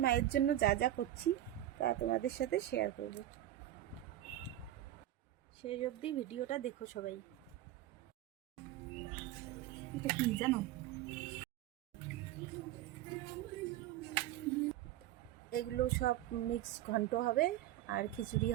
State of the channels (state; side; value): quieter; left; 13.6 dB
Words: মায়ের জন্য যা যা করছি তা তোমাদের সাথে শেয়ার করব। সেই অবধি ভিডিওটা দেখো সবাই। এটা কি জানো? এগুলো সব মিক্স ঘন্ট হবে আর খিচুড়ি